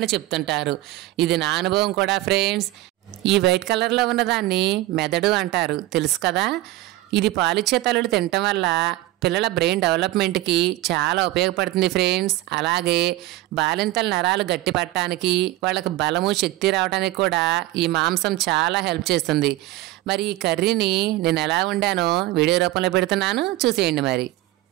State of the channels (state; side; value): quieter; left; 17.2 dB